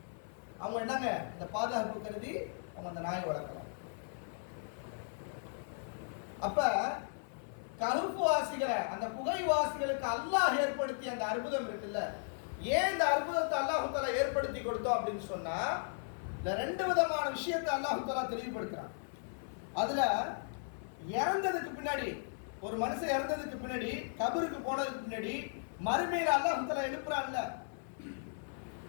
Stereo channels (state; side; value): silent; right; 54 dB below the other